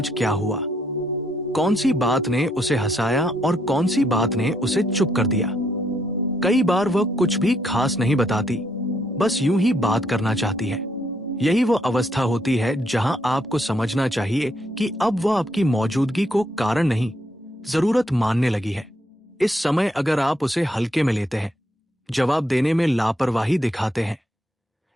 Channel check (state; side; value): normal; both; correlation 0.74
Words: क्या हुआ, कौन सी बात ने उसे हंसाया और कौन सी बात ने उसे चुप कर दिया। कई बार वह कुछ भी खास नहीं बताती, बस यूं ही बात करना चाहती है। यही वो अवस्था होती है जहां आपको समझना चाहिए कि अब वह आपकी मौजूदगी को कारण नहीं, जरूरत मानने लगी है। इस समय अगर आप उसे हल्के में लेते हैं, जवाब देने में लापरवाही दिखाते हैं,